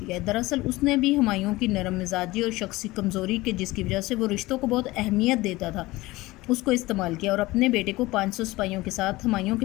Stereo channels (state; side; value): quieter; right; 19.8 dB